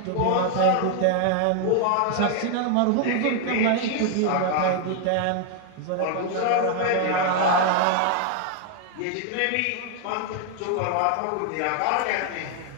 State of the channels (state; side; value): different; both; correlation 0.00